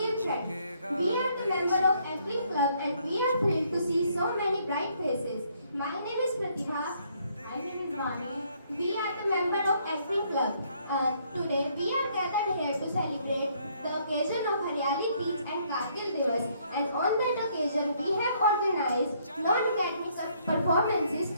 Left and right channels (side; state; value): both; inverted; correlation -0.68